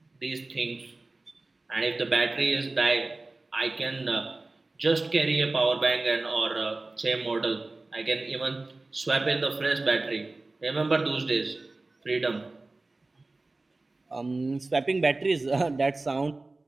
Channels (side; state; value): left; quieter; 3.2 dB